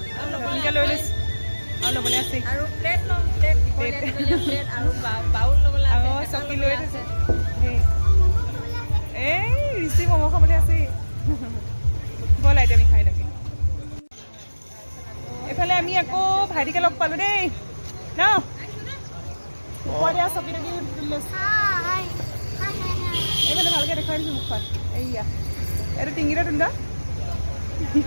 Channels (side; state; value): both; inverted; correlation -1.00